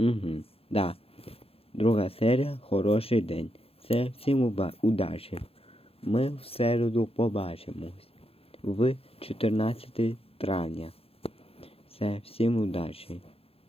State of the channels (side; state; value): right; late; 0.28 ms